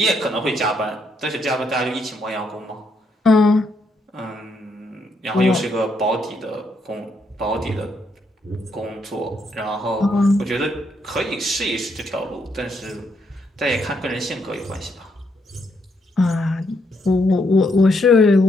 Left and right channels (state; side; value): normal; both; correlation 0.76